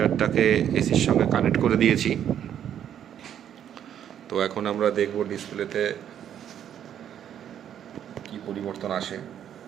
এসির সঙ্গে কানেক্ট করে দিয়েছি। তো এখন আমরা দেখব ডিসপ্লেতে কি পরিবর্তন আসে।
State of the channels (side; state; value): left; quieter; 9.8 dB